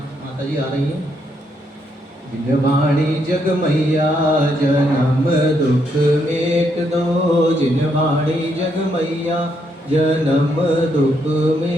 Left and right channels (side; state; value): both; normal; correlation 0.76